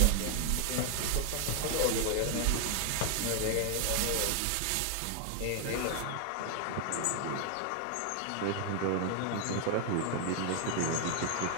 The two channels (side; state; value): both; different; correlation 0.00